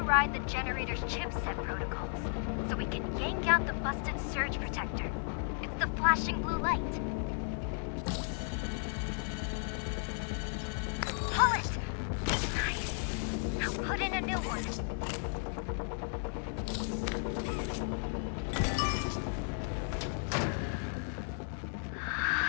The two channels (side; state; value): right; silent; 55 dB below the other